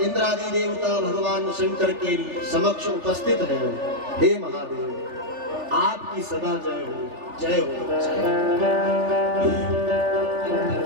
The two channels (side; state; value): left; late; 3.4 ms